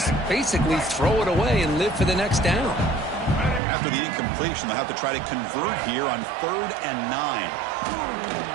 basically throw it away and live for the next down. After the incompletion, they'll have to try to convert here on 3rd and 9.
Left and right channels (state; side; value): drops out; left; at 3.6 s